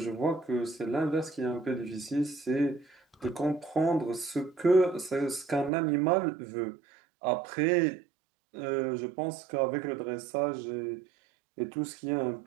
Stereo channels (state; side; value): drops out; left; at 5.7 s